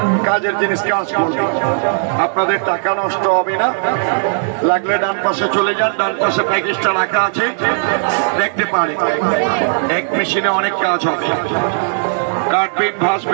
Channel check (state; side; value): silent; left; digital silence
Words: কাজের জিনিস কাজ করবে, আপনাদের টাকা নষ্ট হবে না। লাগলে ডান পাশে চলে যান, ডান পাশে প্যাকেজটা রাখা আছে, দেখতে পারে। এক মেশিনে অনেক কাজ হবে, কাটবেন,